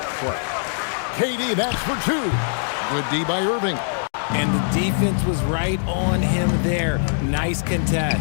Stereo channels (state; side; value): silent; right; digital silence